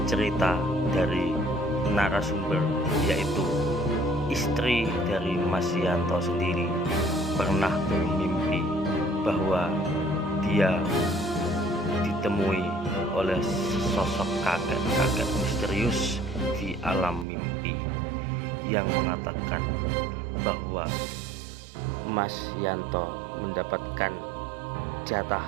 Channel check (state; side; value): drops out; left; at 17.2 s